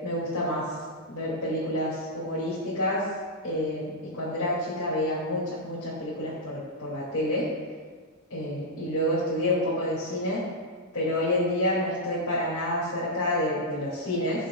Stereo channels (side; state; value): both; normal; correlation -0.06